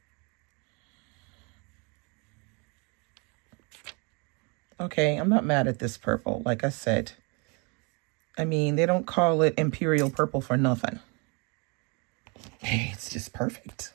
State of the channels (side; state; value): left; quieter; 31.8 dB